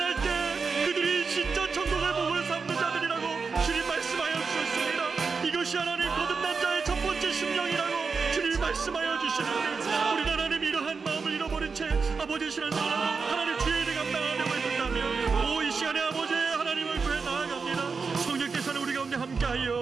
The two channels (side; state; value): left; quieter; 5.0 dB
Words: 때 그들이 진짜 천국의 복을 삼는 자들이라고 주님 말씀하여 주셨습니다. 이것이 하나님 거듭난 자의 첫 번째 심령이라고 주님이 말씀하여 주시는데 우리 하나님 이러한 마음을 잃어버린 채 아버지의 신앙생활을 하고 하나님 주의 일을 감당하려고 했다면 오 이 시간에 아버지의 하나님을 구해 나아갑니다. 성령께서는 우리 가운데